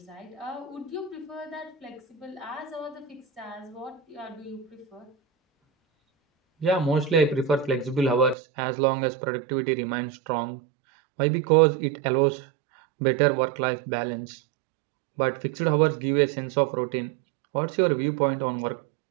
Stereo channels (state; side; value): drops out; left; at 8.3 s